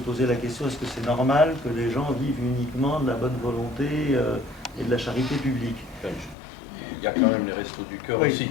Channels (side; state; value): right; drops out; at 6.4 s